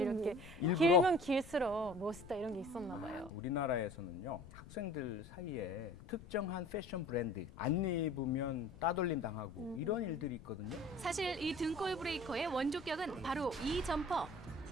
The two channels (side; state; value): left; noise; rumble, 18 dB below the sound